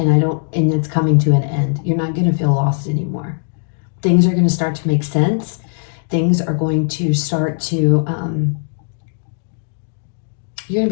it's coming to an end. You're not going to feel lost anymore. Things are going to start to make sense. Things are going to start to, you're going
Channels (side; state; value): right; silent; 67 dB below the other